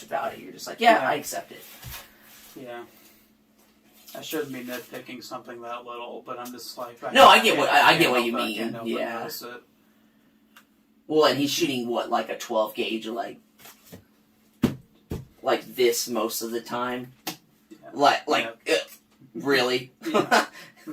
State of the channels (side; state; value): both; identical; correlation 1.00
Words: about it. You're just like, I accept it. Yeah. I shouldn't be nitpicking something that little, but I'm just like... I get what you mean. Yeah. Well, and he's shooting, like a 12 gauge, like this most of the time? Yeah. Really? Yeah.